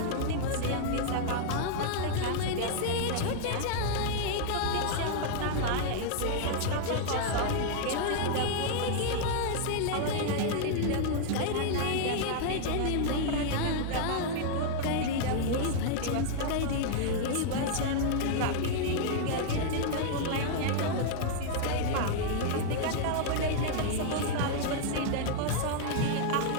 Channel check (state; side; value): different; both; correlation 0.00